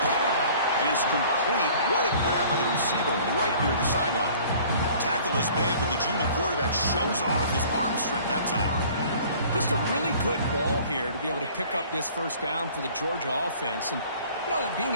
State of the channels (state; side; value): inverted; both; correlation -0.51